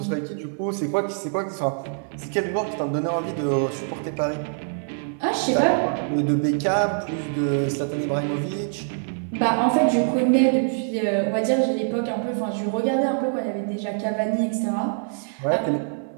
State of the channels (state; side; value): silent; left; 62 dB below the other